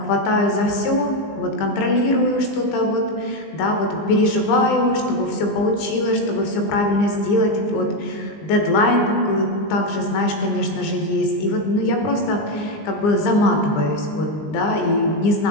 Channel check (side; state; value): right; late; 19 ms